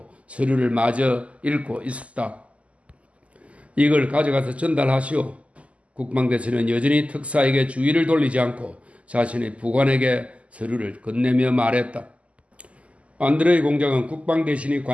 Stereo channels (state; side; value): late; left; 0.064 ms